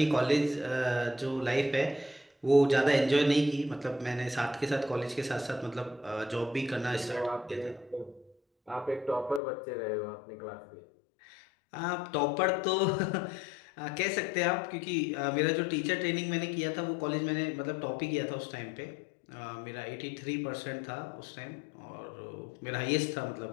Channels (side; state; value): right; drops out; at 9.4 s